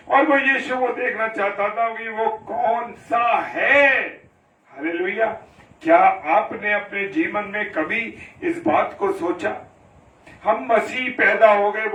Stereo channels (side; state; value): both; identical; correlation 1.00